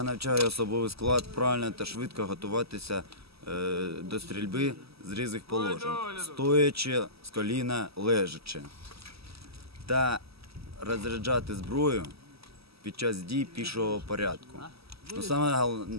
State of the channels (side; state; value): left; late; 0.77 ms